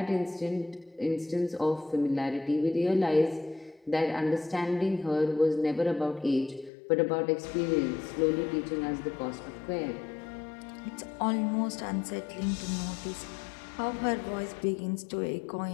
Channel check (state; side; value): drops out; right; at 6.7 s